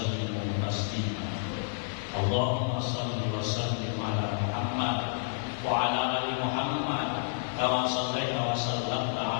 taslima. Allahumma shalli wa sallim ala Muhammad wa ala ali Muhammad kama shallaita wa sallamta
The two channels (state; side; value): silent; right; digital silence